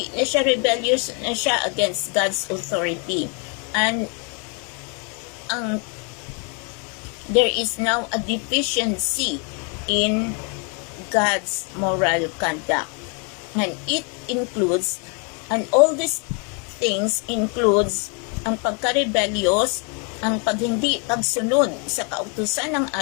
na siya rebellious na siya against God's authority. And there is now a deficiency in God's moral conduct. And it includes, and all these things includes ang pagka-rebellious, ang pagsunod sa kautusan ng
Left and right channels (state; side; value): quieter; right; 36.4 dB